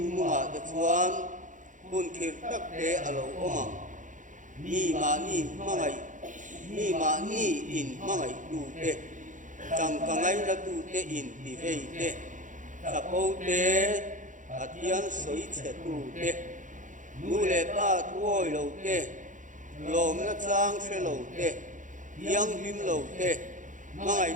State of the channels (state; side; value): late; left; 0.37 ms